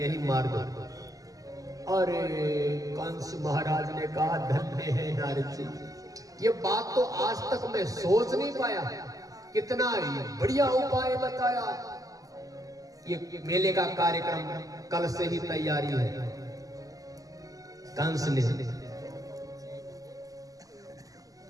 मार दो। अरे कंस महाराज ने कहा, धन्य है नारद जी, ये बात तो आज तक मैं सोच नहीं पाया, कितना बढ़िया उपाय बताया। ये मेले का कार्यक्रम कल से ही तैयारी है। कंस ने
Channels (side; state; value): left; late; 0.17 ms